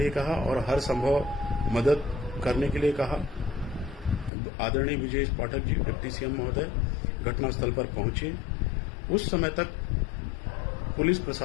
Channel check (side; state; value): right; drops out; at 4.3 s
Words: कहा और हर संभव मदद करने के लिए कहा। आदरणीय ब्रजेश पाठक जी, डिप्टी सीएम महोदय घटनास्थल पर पहुंचे। उस समय तक पुलिस